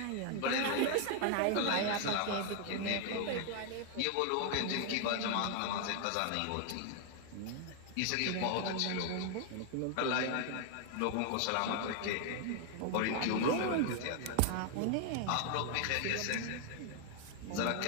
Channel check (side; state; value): both; different; correlation 0.00